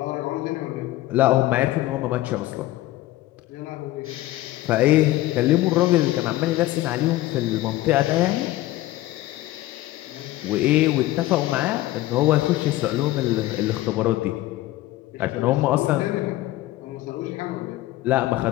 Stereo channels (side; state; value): right; quieter; 16.3 dB